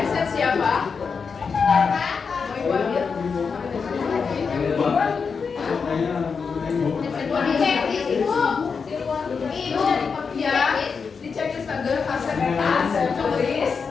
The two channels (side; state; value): right; quieter; 5.5 dB